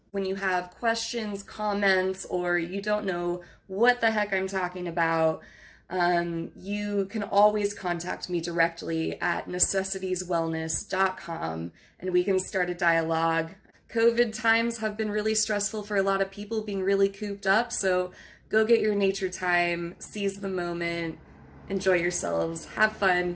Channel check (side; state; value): both; identical; correlation 1.00